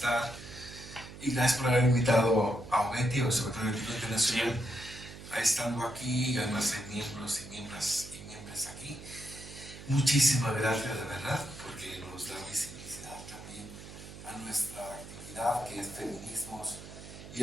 Y gracias por haber invitado a OMETI, o Observatorio Ético Internacional, a estando aquí, y además hay miembros y miembros aquí. Muchísimas gracias, de verdad, porque nos da visibilidad también a nuestra actividad, que es feminismos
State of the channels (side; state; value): right; noise; hum, 14 dB below the sound